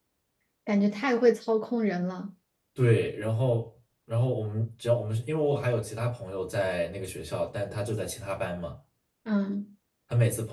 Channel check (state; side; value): identical; both; correlation 1.00